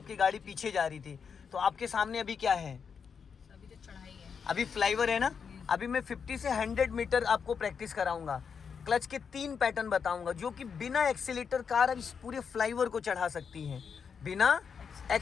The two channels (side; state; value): right; quieter; 6.4 dB